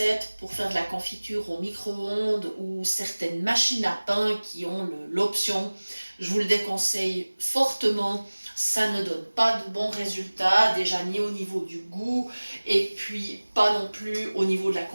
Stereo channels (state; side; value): inverted; both; correlation -1.00